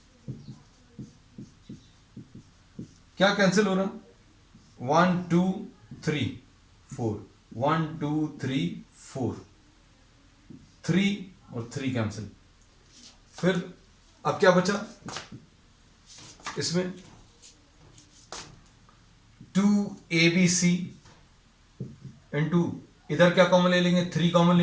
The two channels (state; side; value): identical; both; correlation 1.00